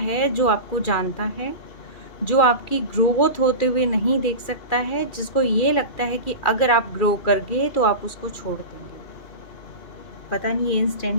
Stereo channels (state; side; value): late; right; 2.4 ms